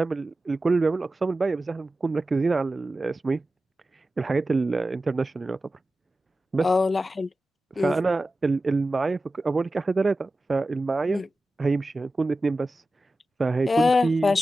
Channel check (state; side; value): normal; both; correlation 0.94